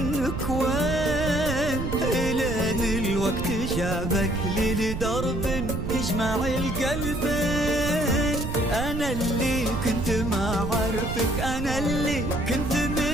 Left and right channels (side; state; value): right; noise; rumble, 4 dB below the sound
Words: وين، إلين الوقت جابك لي لدرب يجمع القلبين. أنا اللي كنت ما عرفك، أنا اللي كنت